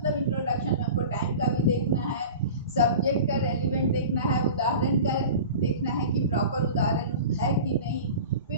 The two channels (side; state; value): both; inverted; correlation -0.36